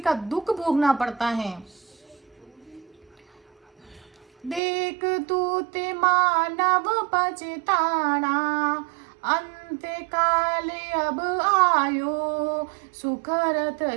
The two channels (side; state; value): left; drops out; at 4.6 s